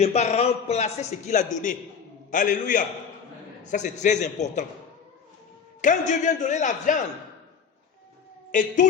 pas remplacer ce qu'il a donné. Alléluia. Ça, c'est très important. Quand Dieu vient donner la viande et tous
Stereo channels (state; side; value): quieter; right; 6.6 dB